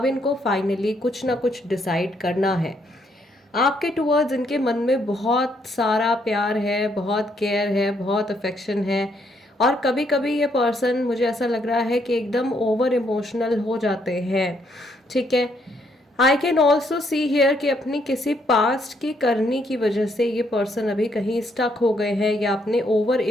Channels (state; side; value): normal; both; correlation 0.72